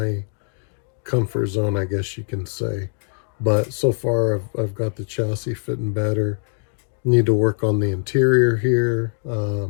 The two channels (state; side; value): silent; right; 59 dB below the other